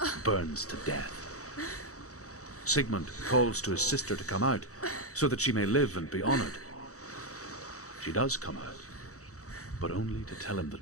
burns to death. Sigmund calls to his sister to come out so that she may live and be honored. She does come out, but only to tell him the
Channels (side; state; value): right; late; 0.65 ms